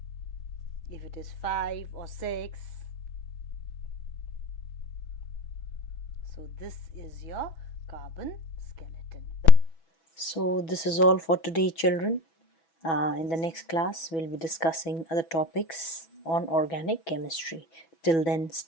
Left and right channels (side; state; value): right; late; 6.1 ms